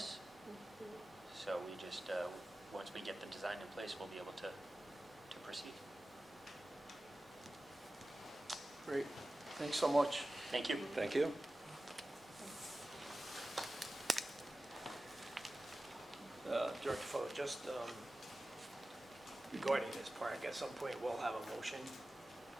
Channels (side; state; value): both; normal; correlation 0.95